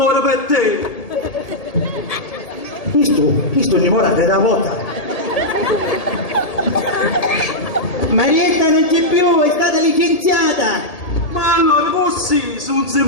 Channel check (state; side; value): late; right; 1.7 ms